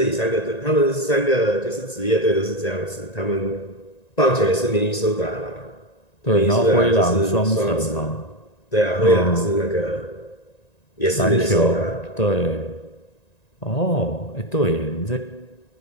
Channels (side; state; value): right; late; 1.9 ms